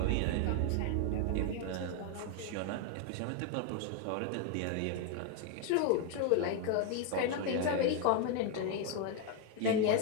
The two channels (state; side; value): different; both; correlation 0.01